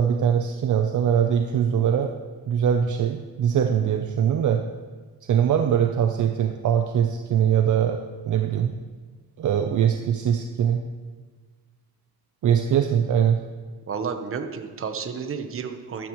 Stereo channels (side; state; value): left; quieter; 8.2 dB